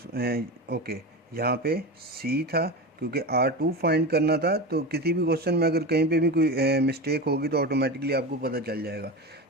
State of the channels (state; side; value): normal; both; correlation 0.24